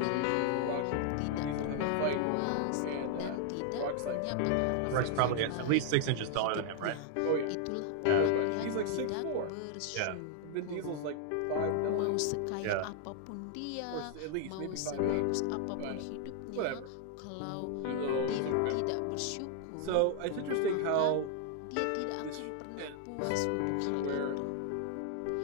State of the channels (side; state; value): both; different; correlation 0.00